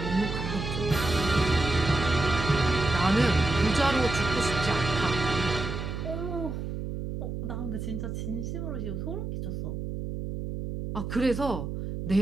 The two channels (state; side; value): noise; right; hum, 5 dB below the sound